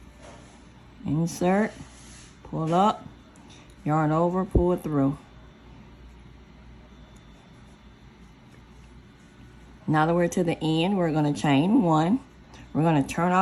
Insert, pull up, yarn over, pull it through. Now that we're to the end, we're going to chain one. We're going to turn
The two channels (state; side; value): identical; both; correlation 1.00